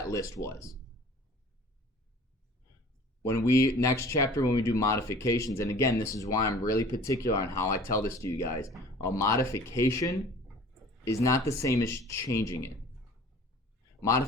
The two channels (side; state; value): both; normal; correlation 0.47